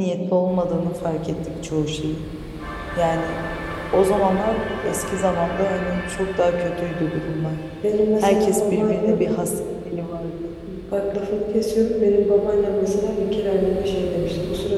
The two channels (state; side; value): identical; both; correlation 1.00